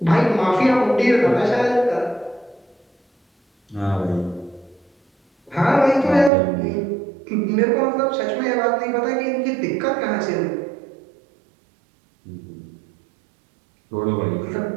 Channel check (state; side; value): drops out; left; at 6.3 s